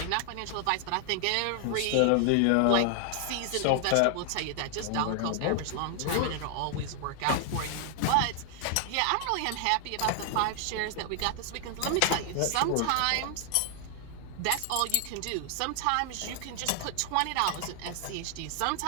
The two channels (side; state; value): both; different; correlation 0.00